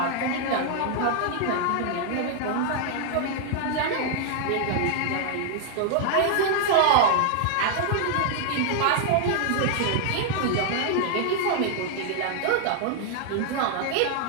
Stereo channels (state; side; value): different; both; correlation 0.00